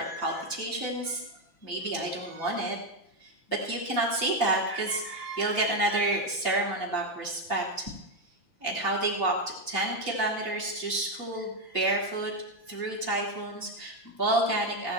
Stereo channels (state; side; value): late; right; 5.8 ms